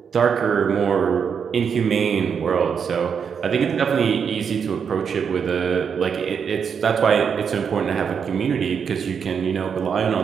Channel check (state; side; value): quieter; left; 6.8 dB